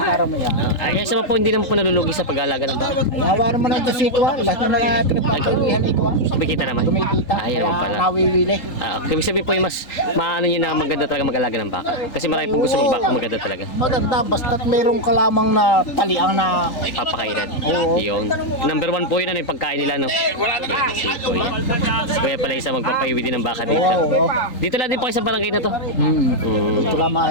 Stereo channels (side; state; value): right; late; 3.8 ms